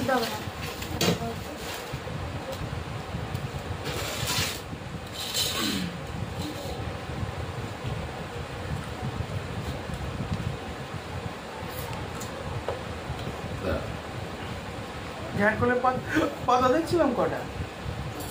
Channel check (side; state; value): both; identical; correlation 1.00